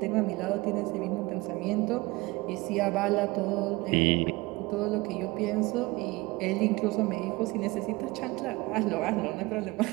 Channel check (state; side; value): quieter; left; 22.4 dB